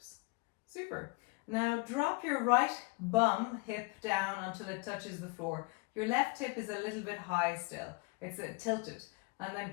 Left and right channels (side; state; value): right; quieter; 27.3 dB